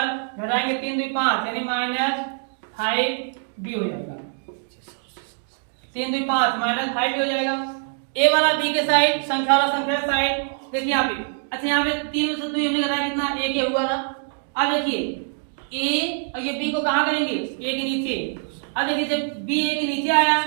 घटाएंगे 3 2 5 यानी माइनस 5b हो जाएगा। 3 2 5 माइनस 5b हो जाएगा। a वाला b के साइड संख्या वाला संख्या के साइड देखिए यहाँ पे। अच्छा यहाँ पे 3 में से 2 हमने घटाया कितना a के हुआ था। अब देखिए a और ये b को कहाँ करेंगे a के नीचे। अब देखिए जब b a के नीचे आया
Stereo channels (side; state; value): left; silent; 63 dB below the other